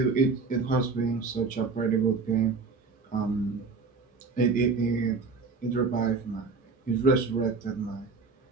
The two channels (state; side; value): quieter; left; 4.4 dB